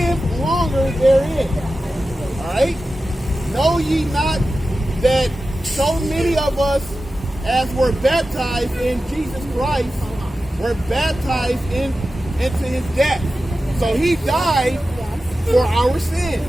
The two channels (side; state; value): both; normal; correlation 0.93